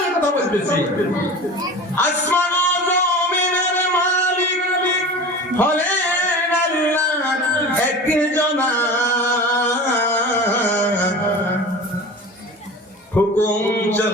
কথা বলতেছি। আসমান ও জমিনের মালিক হলেন আল্লাহ একজন। হুকুম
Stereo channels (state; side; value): normal; both; correlation 0.35